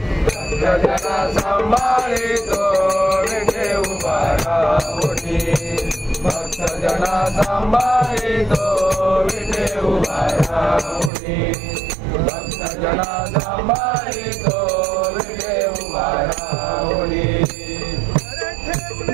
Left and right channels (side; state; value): left; drops out; at 11.1 s